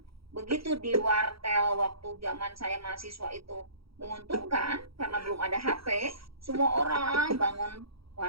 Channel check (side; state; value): left; late; 0.75 ms